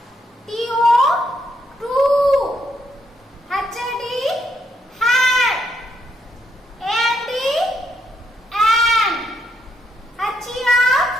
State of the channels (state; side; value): normal; both; correlation 0.77